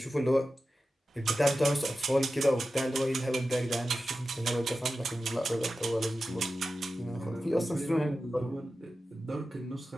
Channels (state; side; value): normal; both; correlation 0.93